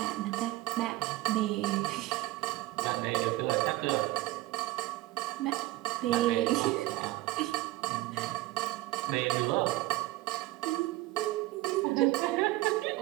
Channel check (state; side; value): quieter; left; 18.2 dB